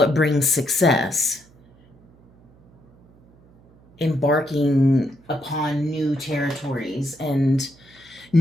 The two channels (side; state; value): right; noise; hum, 28 dB below the sound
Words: brings success. Embarking upon new territories and